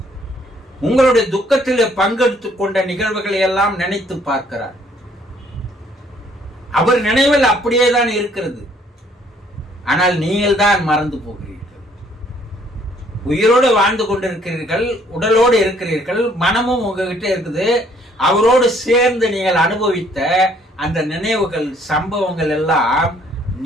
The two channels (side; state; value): both; normal; correlation 0.63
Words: உங்களுடைய துக்கத்தில் பங்கெடுத்துக் கொண்ட நிகழ்வுகளை எல்லாம் நினைத்து பார்க்கிறார். அவர் நினைவில் அப்படியே தான் இருக்கிறது. ஆனால் நீங்கள் தான் மறந்து போகிறீர்கள். உயிரோடு வாழ்ந்து கொண்டிருக்கிறீர்கள், உடலோடு இருக்கிறீர்கள், மனமும் உங்ககிட்ட இருக்குது. அவரோடு சேர்ந்து நீங்கள் அனுபவித்த அந்த நினைவுகள், சம்பவங்கள் எல்லாம்